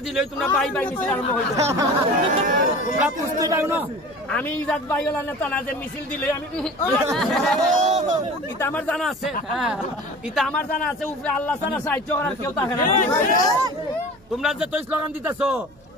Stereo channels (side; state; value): right; noise; hum, 29 dB below the sound